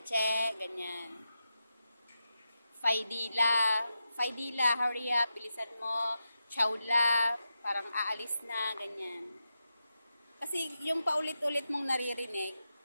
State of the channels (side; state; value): both; inverted; correlation -0.88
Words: ganyan. Faidila, hurry up, bilisan mo, Chowla, parang aalis na, ganyan. Kasi yung paulit-ulit mong naririnig,